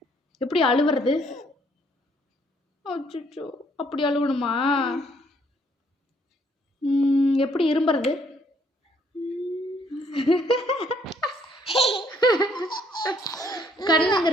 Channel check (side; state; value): both; normal; correlation 0.66